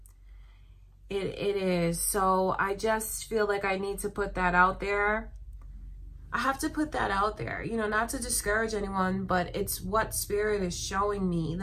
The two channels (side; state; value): both; identical; correlation 1.00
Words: It is. So I just feel like I need to put that out there. I have to put that out there, you know, not to discourage anyone, but it's what Spirit is showing me.